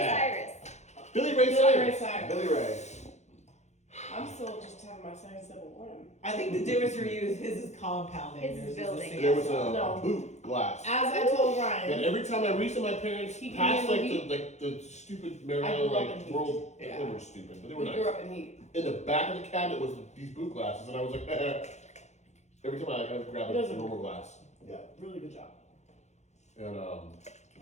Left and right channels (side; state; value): right; late; 0.33 ms